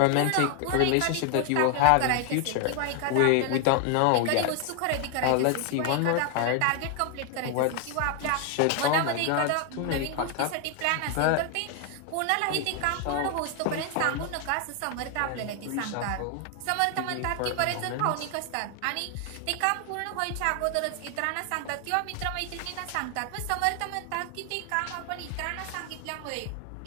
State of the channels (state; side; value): different; both; correlation 0.00